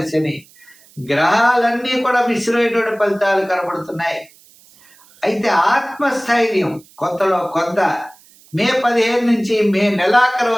శని, గ్రహాలన్నీ కూడా మిశ్రమైనటువంటి ఫలితాలు కనబడుతున్నాయి. అయితే ఆత్మస్థైర్యం కొంతలో కొంత మే 15 నుంచి మే నెలాఖరు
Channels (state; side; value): noise; right; hiss, 27 dB below the sound